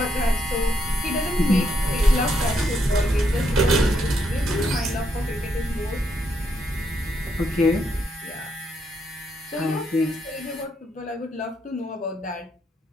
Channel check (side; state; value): both; normal; correlation 0.77